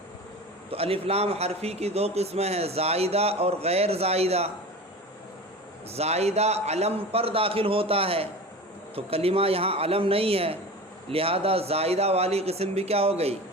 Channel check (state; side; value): normal; both; correlation 0.33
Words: تو الف لام حرفی کی دو قسمیں ہیں، زائدہ اور غیر زائدہ۔ زائدہ علم پر داخل ہوتا ہے تو کلمہ یہاں علم نہیں ہے، لہذا زائدہ والی قسم بھی کیا ہو گئی؟